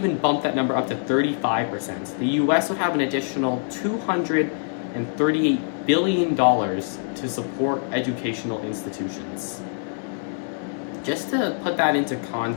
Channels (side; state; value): right; silent; digital silence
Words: bump that number up to 35%, the US would have an additional $238 billion to support educational institutions. Just to put that into